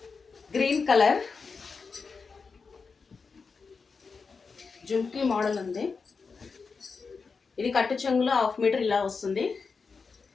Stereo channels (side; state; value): right; quieter; 4.9 dB